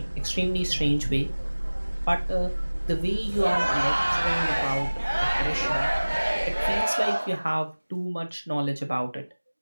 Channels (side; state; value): both; inverted; correlation -1.00